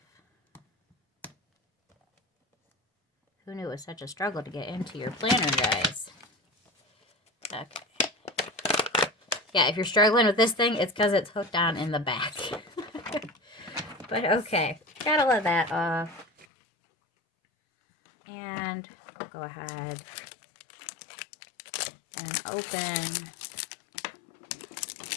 Who knew it was such a struggle to get into your planner, guys? Okay. Yeah, if you're struggling with this thing, it's because it's hooked on in the back. But okay, gotta let that off. And I'll go ahead and open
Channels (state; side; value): drops out; right; at 16.4 s